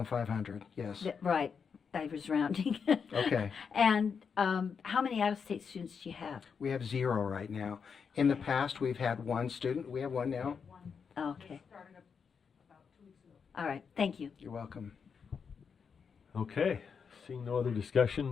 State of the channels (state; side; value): quieter; right; 6.2 dB